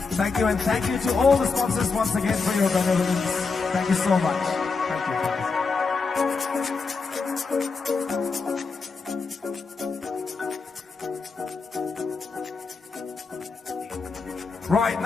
Thank you, and thank you to all the sponsors once again for your benevolence. Thank you so much. Right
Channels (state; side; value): quieter; right; 4.6 dB